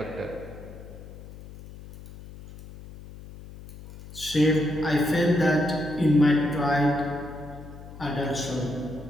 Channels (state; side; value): noise; left; hum, 16 dB below the sound